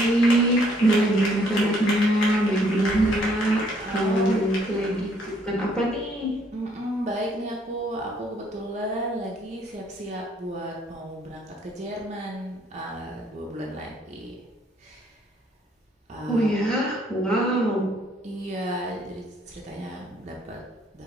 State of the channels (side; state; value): both; normal; correlation 0.66